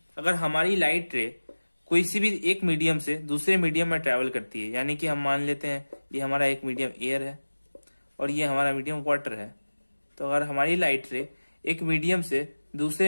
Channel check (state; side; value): inverted; both; correlation -1.00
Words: अगर हमारी लाइट रे कोई सी भी एक मीडियम से दूसरे मीडियम में ट्रेवल करती है, यानी कि हम मान लेते हैं ये हमारा एक मीडियम एयर है और ये हमारा मीडियम वाटर है। तो अगर हमारी लाइट रे एक मीडियम से